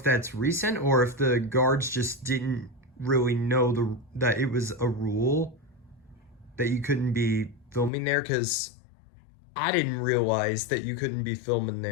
that's recent or if the guards just didn't really know that it was a rule that you couldn't be filming there, because I didn't realize that you couldn't be filming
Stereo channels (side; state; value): right; drops out; at 7.9 s